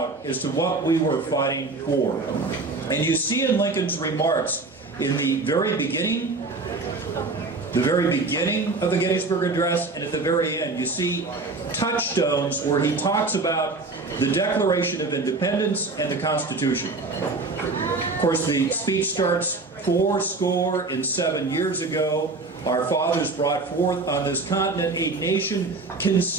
as to what we were fighting for. And you see in Lincoln's remarks in the very beginning of the Gettysburg Address and at the very end, you see touchstones where he talks about the Declaration of Independence and the Constitution. Of course, the speech starts 407 years ago. Our fathers brought forth on this continent a nation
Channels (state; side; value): quieter; left; 3.6 dB